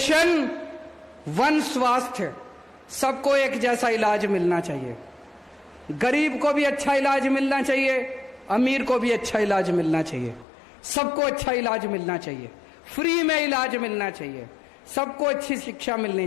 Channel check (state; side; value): drops out; right; at 10.5 s